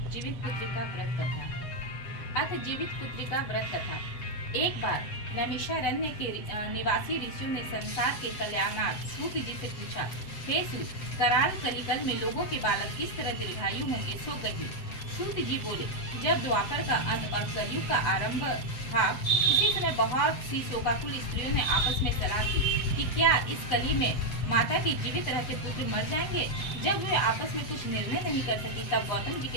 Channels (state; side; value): late; right; 7.9 ms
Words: जीवित पुत्री का व्रत कथा। अथ जीवित पुत्री का व्रत कथा। एक बार नैमिषारण्य के निवासी ऋषियों ने संसार के कल्याणार्थ सूत जी से पूछा, हे सूत, कराल कलिकल में लोगों के बालक किस तरह दीर्घायु होंगे, सो कहिए। सूत जी बोले, जब द्वापर का अंत और कलयुग का आरंभ था, उसी समय बहुत सी शोकाकुल स्त्रियों ने आपस में सलाह की कि क्या इस कली में माता के जीवित रहते पुत्र मर जाएंगे। जब वे आपस में कुछ निर्णय नहीं कर सकी, तब गौतम जी